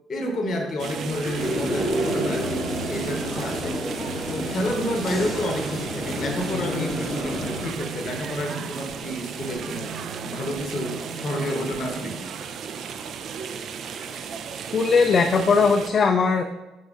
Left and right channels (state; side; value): normal; both; correlation 0.73